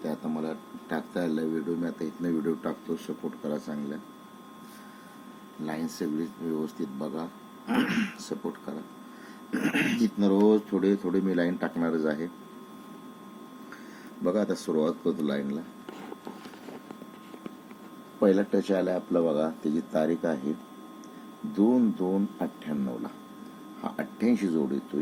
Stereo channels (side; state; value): both; identical; correlation 1.00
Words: त्या आता मला टाकता आल्या व्हिडिओ. मी आता इथनं व्हिडिओ टाकतो, सपोर्ट करा. चांगल्या लाईन सगळी व्यवस्थित बघा, सपोर्ट करा. इथनं रोज थोडे थोडे मी लाईन टाकणारच आहे. बघा आता सुरुवात करतो लाईनला. पहिला टच आला आपला बघा, त्याची तारीख आहे 2/2/98 हा 88 जोड येतोय